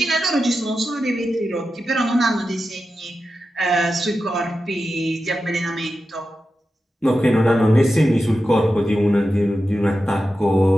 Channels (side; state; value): both; normal; correlation 0.91